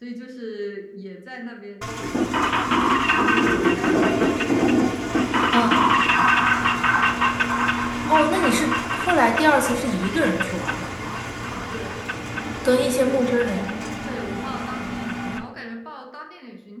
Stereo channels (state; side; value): identical; both; correlation 1.00